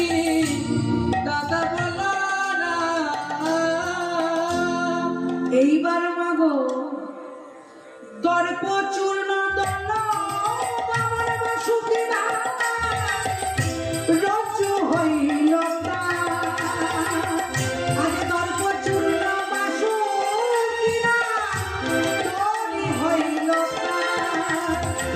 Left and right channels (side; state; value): both; identical; correlation 1.00